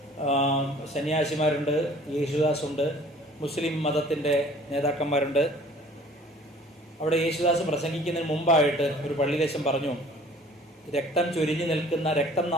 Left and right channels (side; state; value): both; normal; correlation 0.51